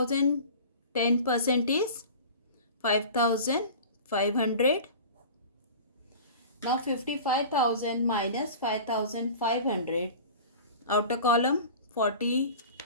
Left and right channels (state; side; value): inverted; both; correlation -0.38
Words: 10% is 5,500. Now 55,000 minus 5,500. Outer column